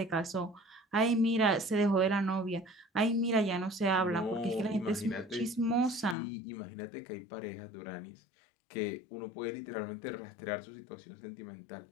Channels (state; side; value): drops out; right; at 6.2 s